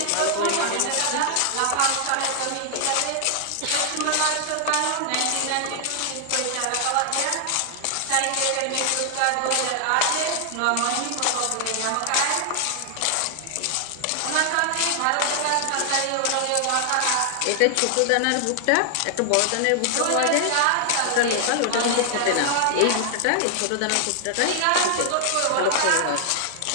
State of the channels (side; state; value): both; different; correlation 0.00